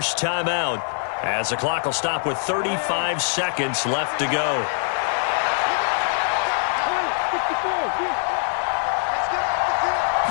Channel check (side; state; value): right; silent; 63 dB below the other